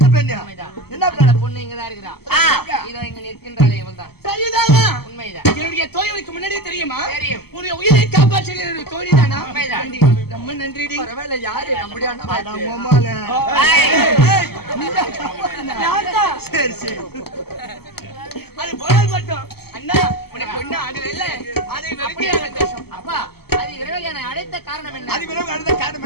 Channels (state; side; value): late; right; 0.96 ms